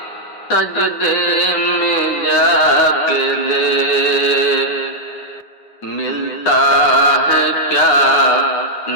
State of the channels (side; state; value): right; late; 9.6 ms